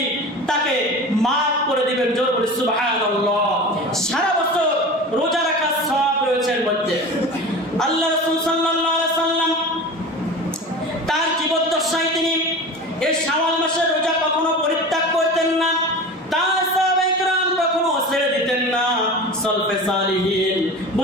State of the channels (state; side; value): normal; both; correlation 0.33